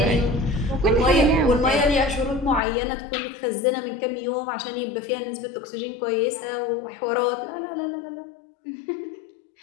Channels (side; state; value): right; drops out; at 2.6 s